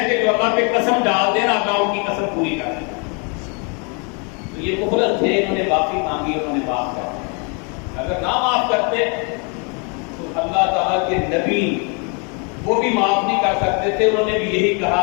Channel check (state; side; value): quieter; right; 35.1 dB